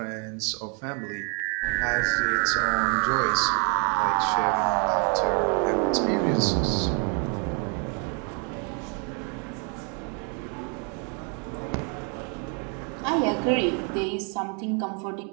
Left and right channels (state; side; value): quieter; left; 37.5 dB